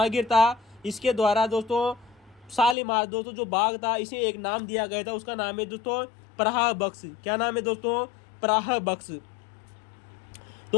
था, इसके द्वारा दोस्तों शालीमार दोस्तों जो बाग था इसे एक नाम दिया गया था, उसका नाम है दोस्तों प्रहा बख्श। क्या नाम है दोस्तों? प्रहा बख्श।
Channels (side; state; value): right; drops out; at 2.8 s